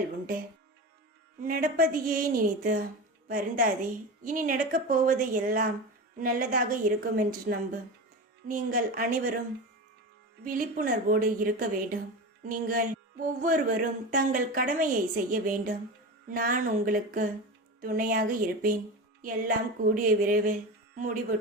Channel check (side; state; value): both; normal; correlation 0.25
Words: உண்டு. நடப்பதையே நினைத்து வருந்தாதே. இனி நடக்கப் போவது எல்லாம் நல்லதாக இருக்கும் என்று நம்பு. நீங்கள் அனைவரும் விழிப்புணர்வோடு இருக்க வேண்டும். நீங்கள் ஒவ்வொருவரும் தங்கள் கடமையை செய்ய வேண்டும். நான் உங்களுக்கு துணையாக இருப்பேன். எல்லாம் கூடிய விரைவில்